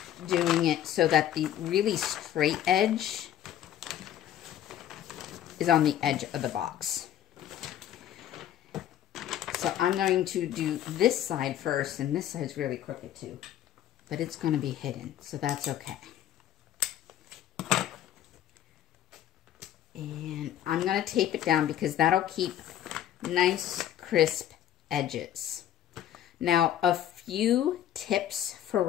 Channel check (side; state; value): right; quieter; 11.4 dB